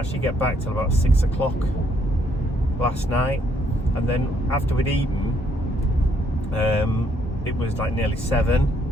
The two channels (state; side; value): normal; both; correlation 0.70